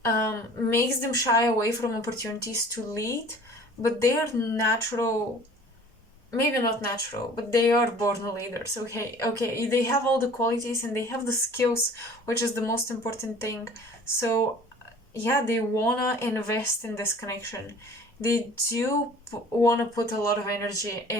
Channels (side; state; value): both; normal; correlation 0.47